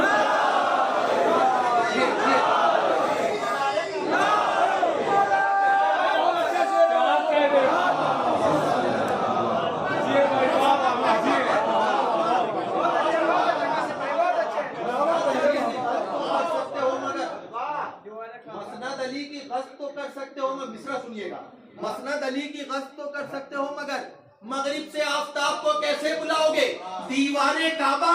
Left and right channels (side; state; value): both; identical; correlation 1.00